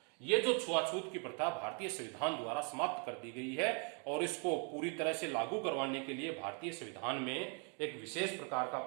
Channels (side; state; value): left; quieter; 37.2 dB